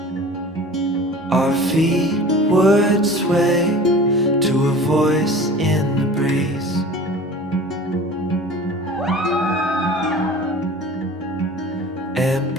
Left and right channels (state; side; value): normal; both; correlation 0.40